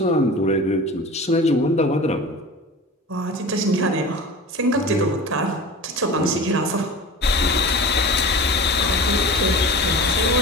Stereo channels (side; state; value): both; normal; correlation 0.35